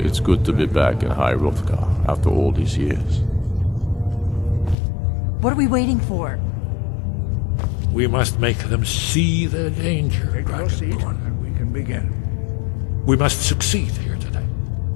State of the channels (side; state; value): right; drops out; at 4.8 s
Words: It's good to be back in High Hrolfgar after all these years. What are we waiting for? We must make them see the danger, Take your seat, Dragonborn. and we can begin. We must succeed here today.